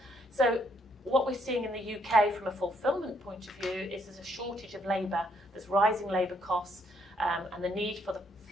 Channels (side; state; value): both; normal; correlation 0.71